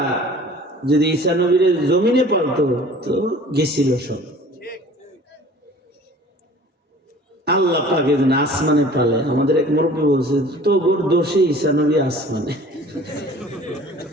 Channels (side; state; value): both; normal; correlation 0.47